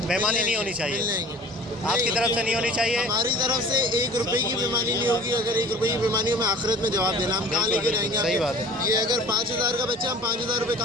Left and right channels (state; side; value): normal; both; correlation 0.44